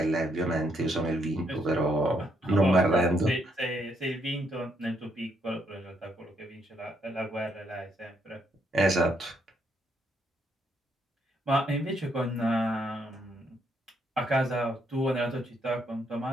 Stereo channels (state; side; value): normal; both; correlation 0.73